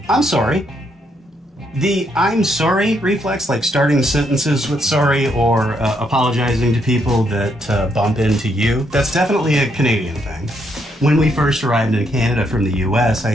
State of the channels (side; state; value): both; normal; correlation 0.75